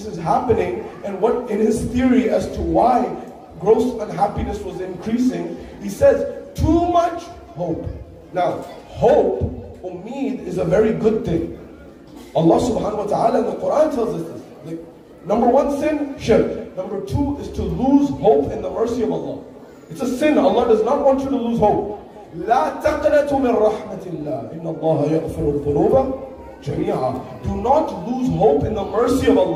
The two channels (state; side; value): identical; both; correlation 1.00